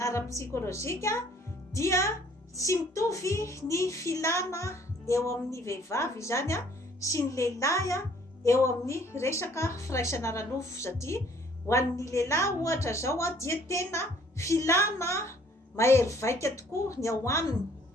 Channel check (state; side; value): normal; both; correlation 0.59